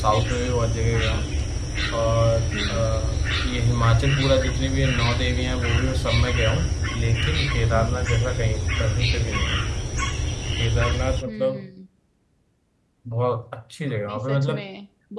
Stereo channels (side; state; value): both; identical; correlation 1.00